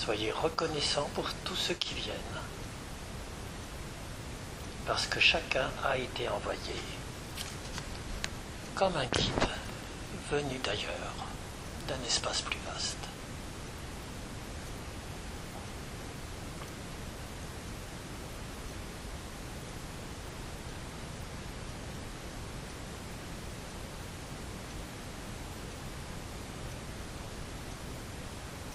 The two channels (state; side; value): identical; both; correlation 1.00